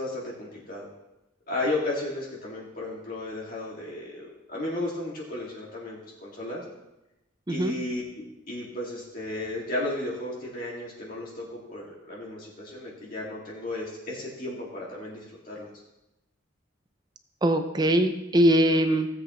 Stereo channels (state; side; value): normal; both; correlation 0.54